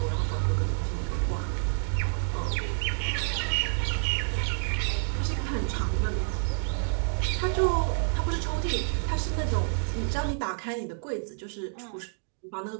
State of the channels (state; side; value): silent; left; digital silence